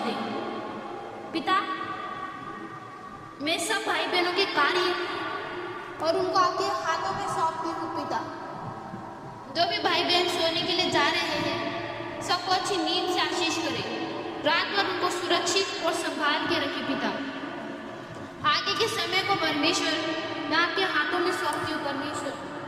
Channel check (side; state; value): both; identical; correlation 1.00